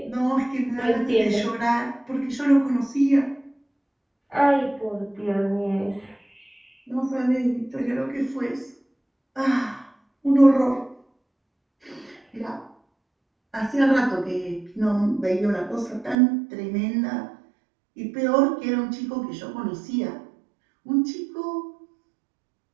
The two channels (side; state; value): left; drops out; at 16.2 s